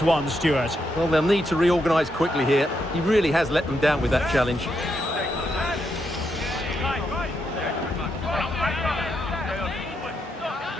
one, Stuart. Well, they'll need to reorganise quickly here. He really has let them down with that challenge.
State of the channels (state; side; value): normal; both; correlation 0.81